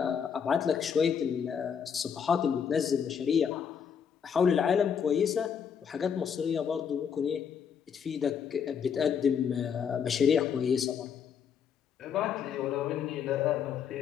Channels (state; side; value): quieter; right; 7.3 dB